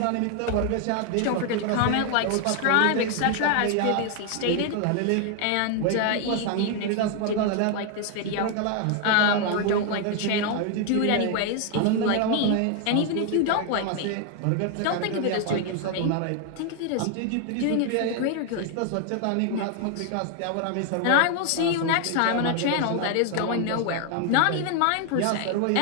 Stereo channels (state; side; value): different; both; correlation 0.00